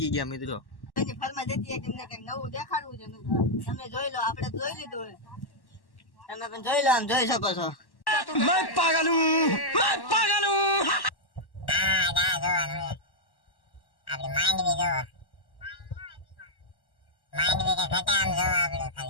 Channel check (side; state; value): right; late; 1.1 ms